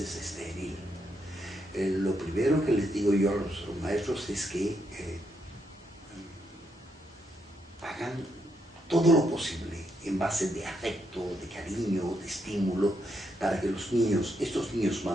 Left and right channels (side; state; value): both; normal; correlation 0.79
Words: estéril. Lo primero que les digo yo a los maestros es que hagan todo lo posible en base de afecto, de cariño, de estímulo, para que los niños, estos niños